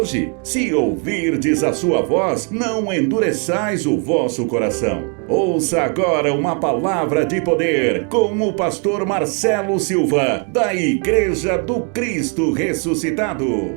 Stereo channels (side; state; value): left; quieter; 37.5 dB